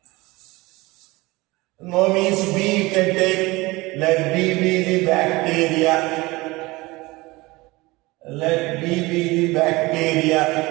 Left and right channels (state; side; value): quieter; left; 21.9 dB